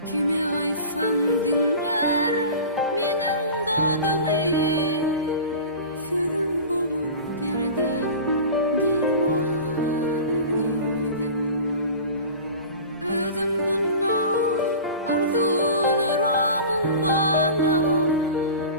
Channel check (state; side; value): inverted; both; correlation -0.36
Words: Kime aysan dinler menin dadımı, sözüm bolur derdem derman edidem. Özüm bundan arzularamın bana,